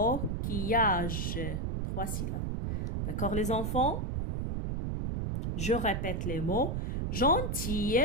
3 syllabes. D'accord, les enfants? Je répète les mots. Gentille,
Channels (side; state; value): right; noise; rumble, 1 dB below the sound